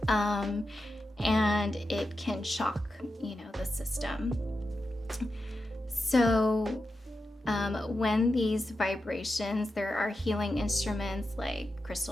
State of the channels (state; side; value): normal; both; correlation 0.90